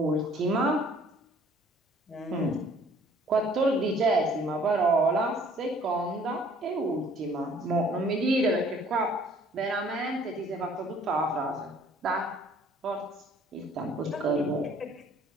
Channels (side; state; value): both; normal; correlation 0.56